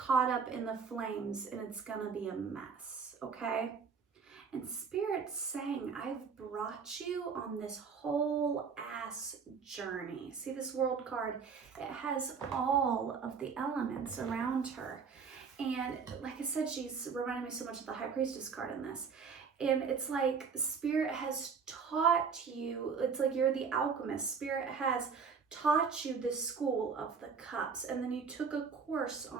up in the flames and it's gonna be a mess, okay? And Spirit's saying, I've brought you on this whole ass journey. See this world card? It has all of the elements around her. And like I said, she's reminding me so much of the High Priestess card in this. And it's like Spirit has taught you, it's like you're the alchemist. Spirit has taught you the school of the cups, and then you took a course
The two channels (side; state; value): left; quieter; 5.8 dB